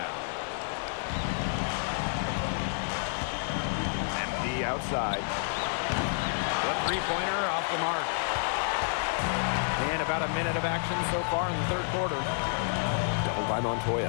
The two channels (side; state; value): right; silent; 58 dB below the other